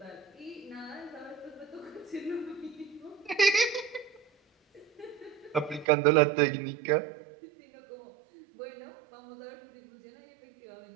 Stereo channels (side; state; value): left; drops out; at 5.9 s